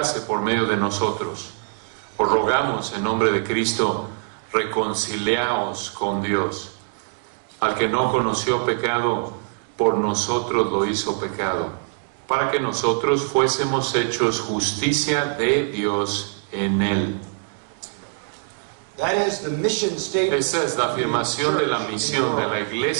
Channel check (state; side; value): silent; left; 63 dB below the other